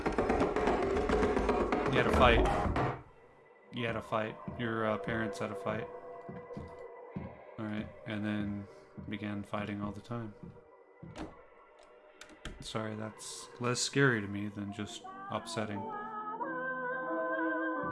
You had a fight. You had a fight. Your parents had a fight. Alright. and then began fighting all the time. Sorry, that's less scary to me than just upsetting.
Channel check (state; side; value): identical; both; correlation 1.00